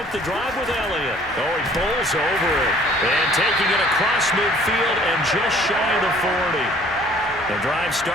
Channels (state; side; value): normal; both; correlation 0.55